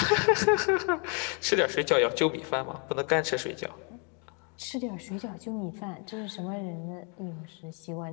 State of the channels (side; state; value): right; quieter; 36.5 dB